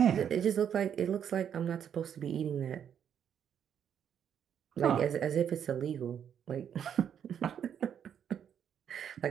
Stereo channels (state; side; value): quieter; left; 8.7 dB